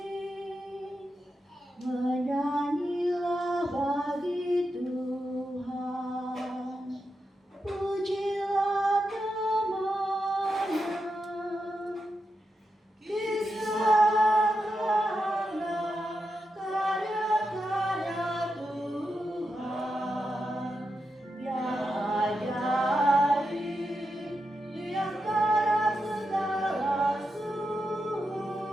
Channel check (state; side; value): normal; both; correlation 0.87